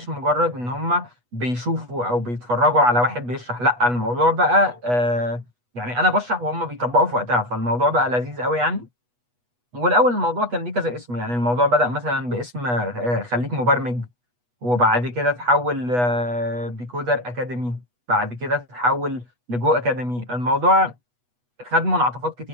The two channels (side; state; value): left; late; 8.2 ms